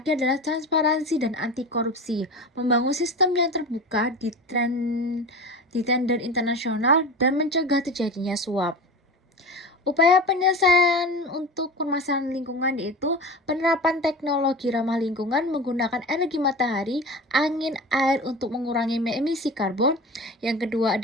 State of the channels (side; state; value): both; normal; correlation 0.31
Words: adalah transparansi dan anti korupsi, membangun sistem yang terbuka di tender internasional dan mencegah terjadinya suap. Upaya penyelesaian untuk permasalahan lingkungan yaitu penerapan teknologi ramah lingkungan menggunakan energi matahari, angin, air untuk mengurangi emisi karbon. Yang kedua